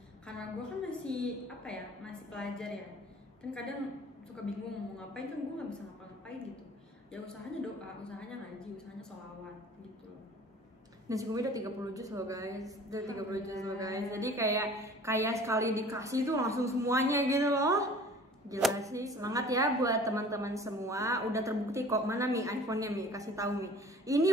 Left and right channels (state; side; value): normal; both; correlation 0.47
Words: karena gue kan masih apa ya, masih pelajar ya. Kan kadang suka bingung mau ngapain, kan gue nggak bisa ngapa-ngapain gitu. Ya usahanya doa, usahanya ngaji, usahanya sholawat gitu loh. Nah si Kumi udah 30 juz loh guys, jadi kayak sekali dikasih tuh langsung semuanya gitu loh. Gila sih, semangat ya buat teman-teman semua. Udah terbukti kok. Mana Mi iPhone-nya Mi, kasih tahu Mi.